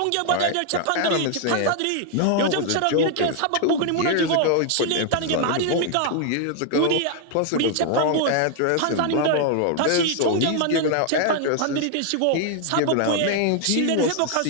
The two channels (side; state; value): both; different; correlation 0.00